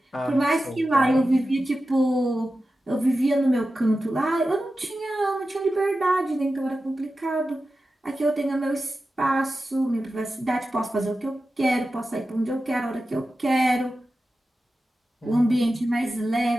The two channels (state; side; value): normal; both; correlation 0.93